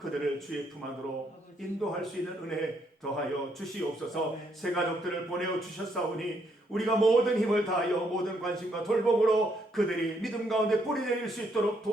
주의 품 안으로 인도할 수 있는 은혜 더하여 주시옵소서. 새 가족들을 보내어 주셨사오니 우리가 모든 힘을 다하여 모든 관심과 돌봄으로 그들이 믿음 가운데 뿌리 내릴 수 있도록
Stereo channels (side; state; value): both; normal; correlation 0.73